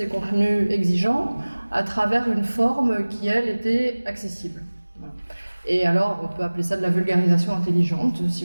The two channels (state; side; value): inverted; both; correlation -1.00